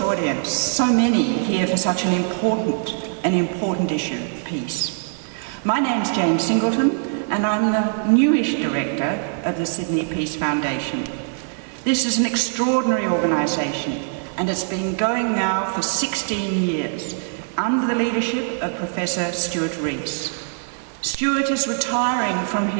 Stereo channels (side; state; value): left; silent; 64 dB below the other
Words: audience. So many here for such an important issue, peace. My name's Jane Singleton and I'm the newish director of the Sydney Peace Foundation. This is an extraordinary organisation and it's been going now for 16 years under the leadership of Professor Stuart Rees. Stuart is retiring from